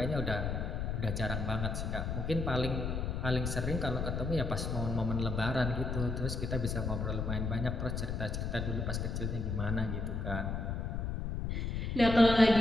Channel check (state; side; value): noise; left; rumble, 2 dB below the sound